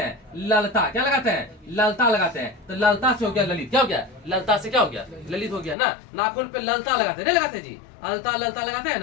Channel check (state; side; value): drops out; right; at 5.8 s